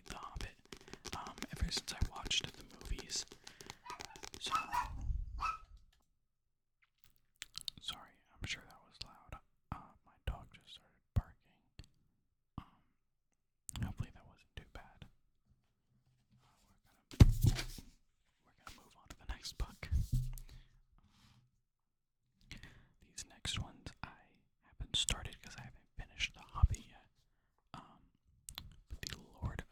The Hobbit ever since I watched the movies. So, sorry, I'm sure that was loud. My dog just started barking. Hopefully that wasn't too bad. We're gonna move on to the next book. These next ones I haven't started because I haven't finished The Hobbit yet. But the Lord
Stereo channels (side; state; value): both; identical; correlation 1.00